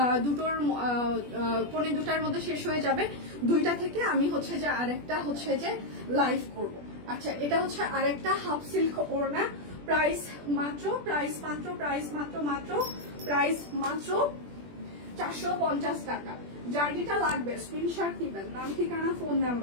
দুটোর 1:45 মধ্যে শেষ হয়ে যাবে। 2টা থেকে আমি হচ্ছে যে আরেকটা হচ্ছে যে লাইভ করব। আচ্ছা, এটা হচ্ছে আরেকটা হাফ সিল্ক ওড়না, প্রাইস মাত্র 450 টাকা। যার যেটা লাগবে স্ক্রিনশট নিবেন, নাম ঠিকানা ফোন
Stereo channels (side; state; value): left; late; 21 ms